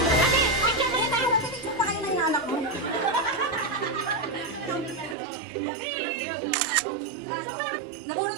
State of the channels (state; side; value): drops out; left; at 5.2 s